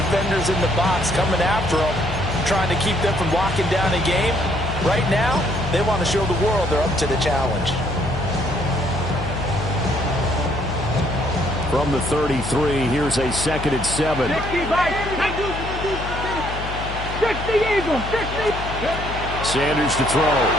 in the box coming after them, trying to keep them from locking down a game. Right now, they want to show the world they're up to the challenge. From the 33, here's a 2nd and 7. 60 Eagles, 60. Sanders to throw.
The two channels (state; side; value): noise; left; hum, 7 dB below the sound